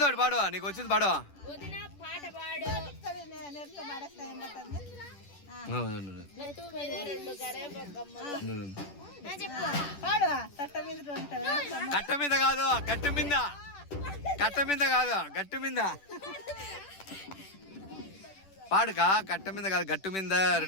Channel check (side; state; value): right; late; 10 ms